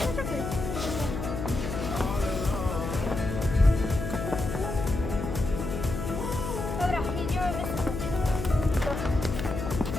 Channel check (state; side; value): noise; left; hum, 4 dB below the sound